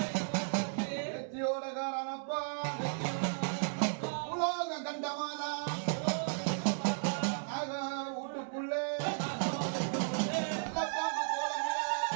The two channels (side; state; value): left; silent; digital silence